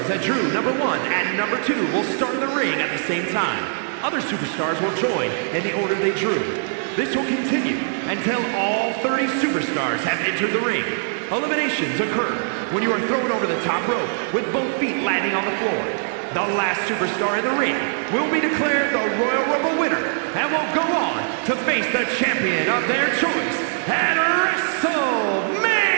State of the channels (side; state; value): left; silent; 57 dB below the other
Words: that drew number 1 and number 2 will start in the ring at the same time. Other superstars will join in the order they drew. This will continue until all 30 superstars have entered the ring. Eliminations occur when you are thrown over the top rope with both feet landing on the floor. The last superstar in the ring will be declared the Royal Rumble winner and will go on to face the champion of their choice at WrestleMania!